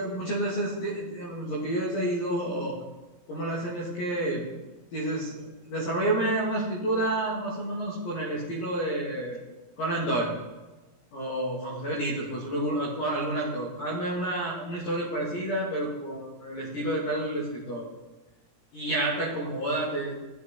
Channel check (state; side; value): late; right; 17 ms